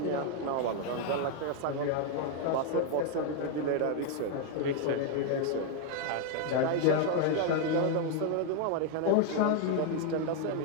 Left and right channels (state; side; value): different; both; correlation 0.00